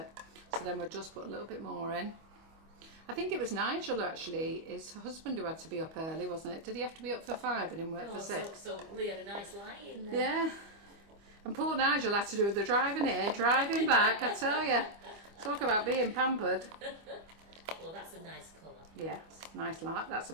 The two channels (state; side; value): late; left; 25 ms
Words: So then we'll just put a little bit more in. I think it was Nigel, actually, his husband, who had to be up early, wasn't it? Did he have to be up for 5 and him work for 6? So Lee had a nice lie in there. Yeah. And poor Nigel had to do the driving here, driving back, I tell you. Talk about being pampered. colour. That's a nice colour. Yeah, nice light. That's a